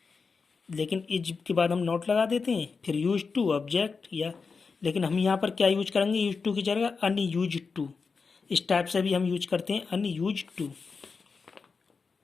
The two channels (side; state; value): right; quieter; 4.9 dB